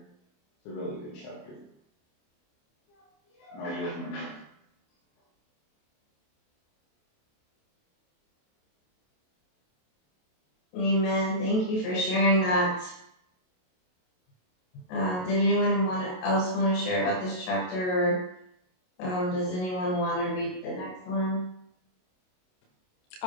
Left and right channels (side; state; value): right; late; 27 ms